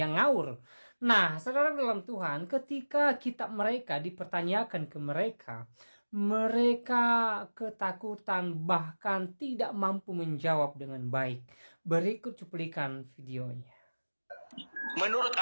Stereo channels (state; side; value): inverted; both; correlation -1.00